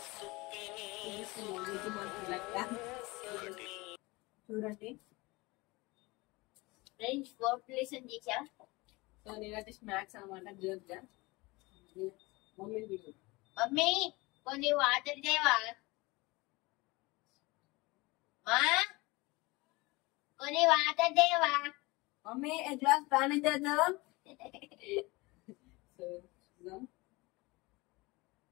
చూడండి ఫ్రెండ్స్, పాపులేషన్ చేశా. సో నేనైతే స్నాక్స్ అనమాట. జోక్గా మమ్మీ మమ్మీ కొన్ని వాటర్ దేవా, మా కొన్ని వాటర్ దేవా. మమ్మీ एक ग्लास पानी दे दो. సో చూద్దాం.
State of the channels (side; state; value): right; quieter; 23.3 dB